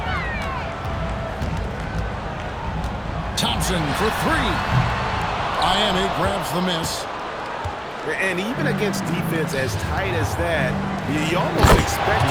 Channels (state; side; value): identical; both; correlation 1.00